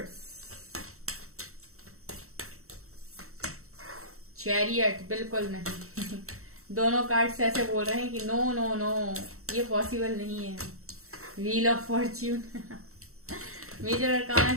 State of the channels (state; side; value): late; left; 0.63 ms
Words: चैरियट, बिल्कुल नहीं। दोनों कार्ड्स ऐसे बोल रहे हैं कि नो नो नो, ये पॉसिबल नहीं है। Wheel of fortune, major arcana